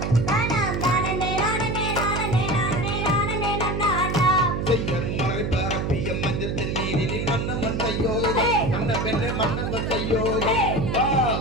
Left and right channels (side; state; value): right; noise; hum, 1 dB below the sound